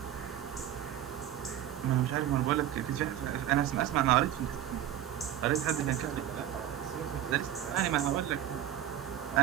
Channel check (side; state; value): left; quieter; 11.3 dB